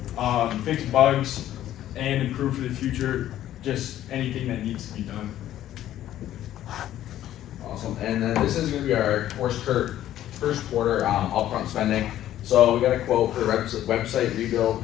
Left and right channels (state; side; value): quieter; right; 12.5 dB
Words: fix bugs, and improve for the future, just anything that needs to be done. Awesome, and then this is gonna be our first quarter upfront spending. So we got a quote for the website rebuild.